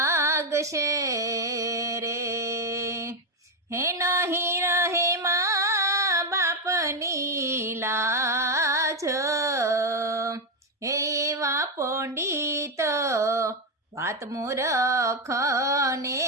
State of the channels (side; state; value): both; normal; correlation 0.06